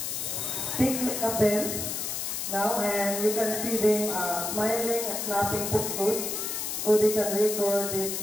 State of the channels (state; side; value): noise; left; hiss, 3 dB below the sound